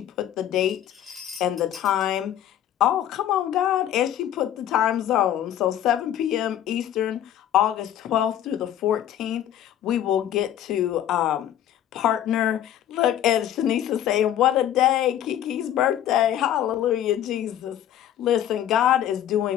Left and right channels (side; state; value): right; quieter; 11.2 dB